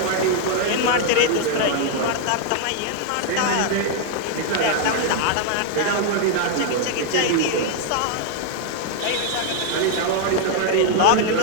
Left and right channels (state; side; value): different; both; correlation 0.00